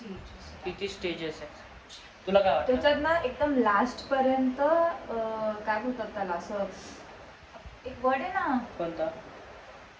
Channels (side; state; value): both; identical; correlation 1.00